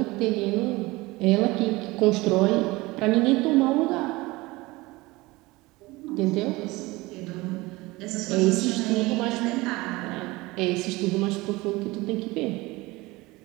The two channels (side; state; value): left; quieter; 21.5 dB